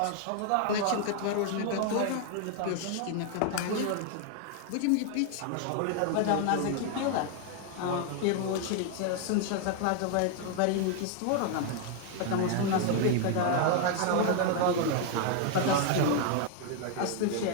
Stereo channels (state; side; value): different; both; correlation 0.00